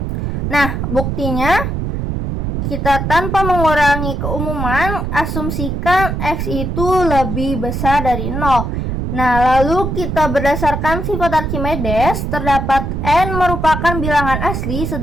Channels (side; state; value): right; noise; rumble, 2 dB below the sound